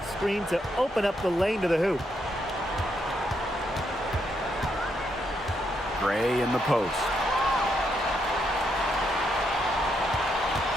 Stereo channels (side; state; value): both; normal; correlation 0.78